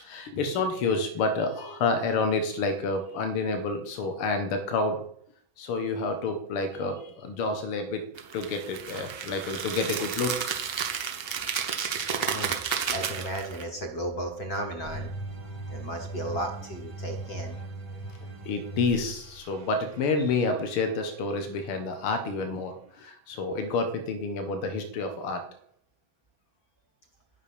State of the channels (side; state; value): right; late; 6.8 ms